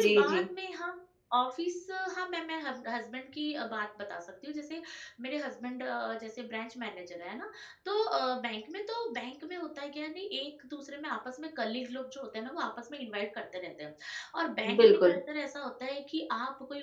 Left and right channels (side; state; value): both; identical; correlation 1.00